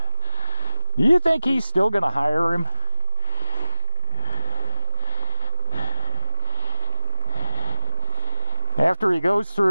Do you think he's still going to hire him? After he goes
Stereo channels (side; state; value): both; inverted; correlation -0.96